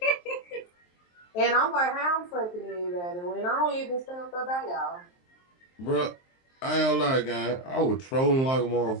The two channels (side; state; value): right; late; 23 ms